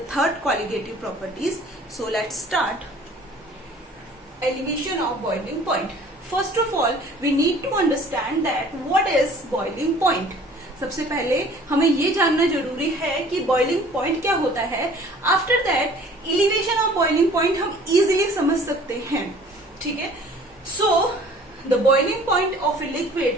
third colligative properties. So let's start. Elevation of boiling point. First of all, we need to understand that what is boiling point. सबसे पहले हमें ये जानना जरूरी है कि boiling point क्या होता है. After that, elevation of boiling point हम easily समझ सकते हैं. ठीक है. So, the boiling point of a liquid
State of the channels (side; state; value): both; normal; correlation 0.51